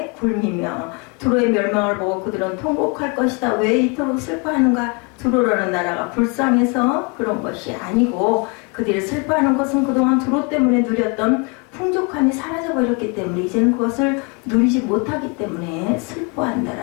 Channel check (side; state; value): right; quieter; 32.1 dB